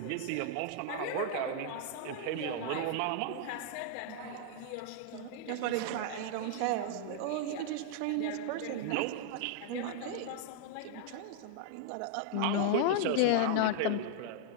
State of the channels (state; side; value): different; both; correlation 0.00